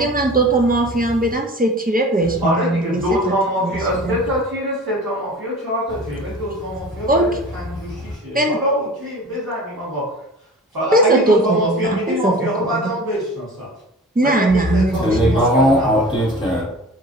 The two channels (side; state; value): both; normal; correlation 0.39